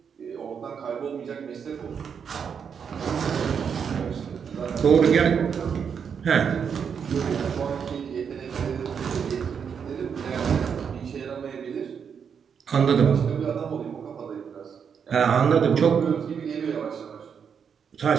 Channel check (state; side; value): quieter; left; 7.0 dB